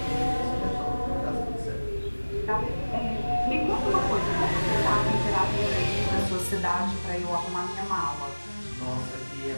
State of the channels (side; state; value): both; inverted; correlation -1.00